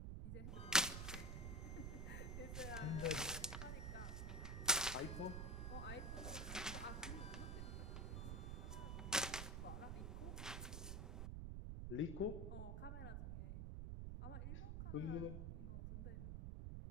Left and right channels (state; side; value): noise; right; rumble, 2 dB below the sound